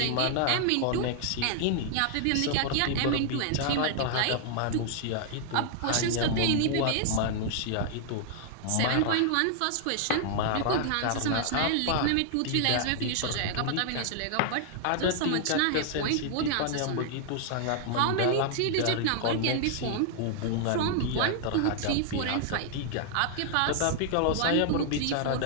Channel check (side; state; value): both; different; correlation -0.01